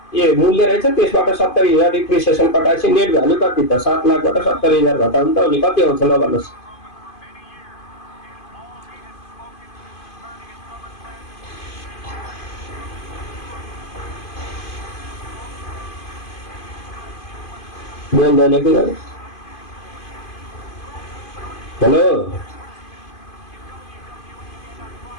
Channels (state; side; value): late; right; 2.5 ms